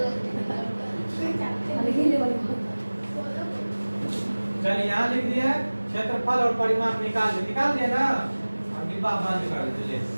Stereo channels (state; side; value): inverted; both; correlation -1.00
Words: चलिए यहाँ लिख दिए क्षेत्रफल और परिमाप निकाल दिए ना? और डिब्बा बंद कर दीजिए।